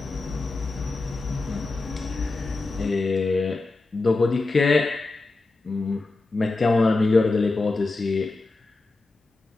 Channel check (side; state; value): right; quieter; 3.3 dB